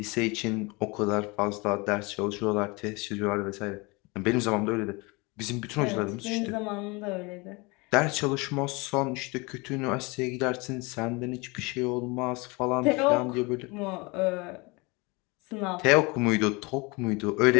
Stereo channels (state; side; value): quieter; right; 26.7 dB